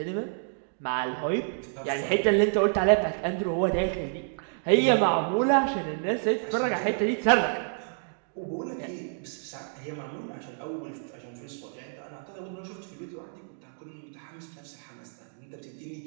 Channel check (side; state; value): left; silent; digital silence